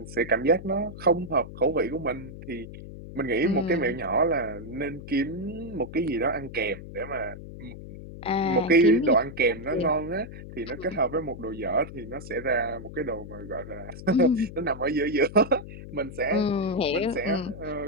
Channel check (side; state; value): left; noise; hum, 13 dB below the sound